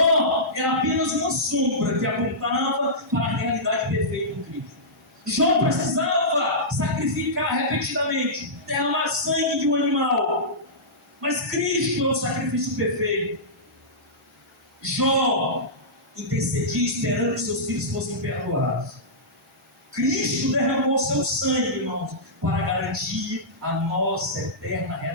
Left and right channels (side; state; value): both; normal; correlation -0.16